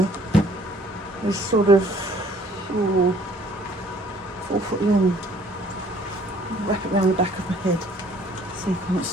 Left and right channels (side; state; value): both; normal; correlation 0.58